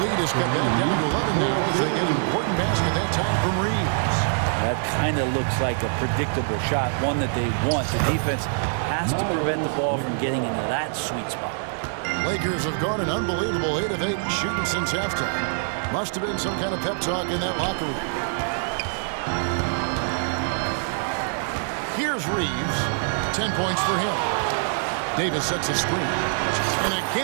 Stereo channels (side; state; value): left; silent; digital silence